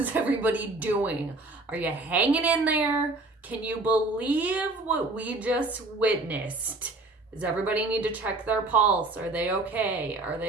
everybody doing? Are you hanging in there? Can you believe what we just witnessed? Does everybody need to check their pulse? Are they okay? Are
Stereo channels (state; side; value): quieter; left; 3.1 dB